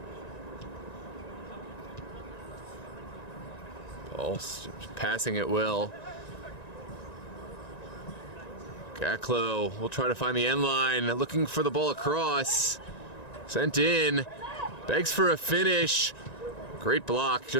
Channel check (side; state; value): right; late; 1.9 ms